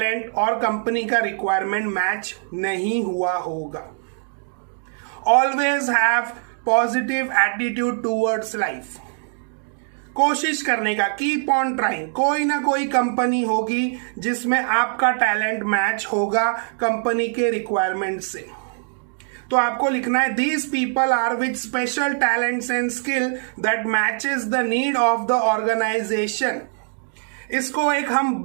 और कंपनी का रिक्वायरमेंट मैच नहीं हुआ होगा। Always have positive attitude towards life. कोशिश करने का, कीप ऑन ट्राइंग। कोई ना कोई कंपनी होगी जिसमें आपका टैलेंट मैच होगा कंपनी के रिक्वायरमेंट से। तो आपको लिखना है, these people are with special talents and skill that matches the need of the organisation. इसको एक हम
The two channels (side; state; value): left; silent; digital silence